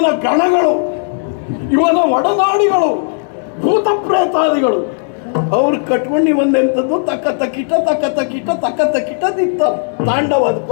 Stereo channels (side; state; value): right; silent; digital silence